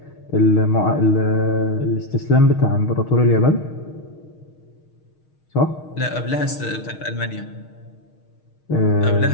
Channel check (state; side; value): late; right; 6.4 ms